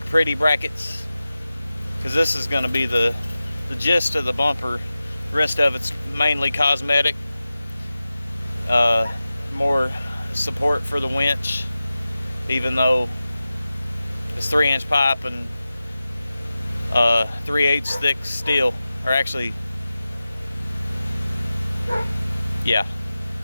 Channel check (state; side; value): inverted; both; correlation -0.95